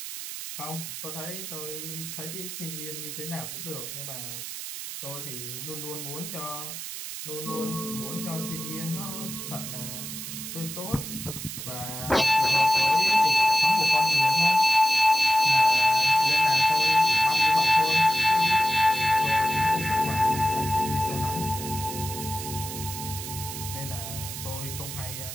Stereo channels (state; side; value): noise; right; hiss, 8 dB below the sound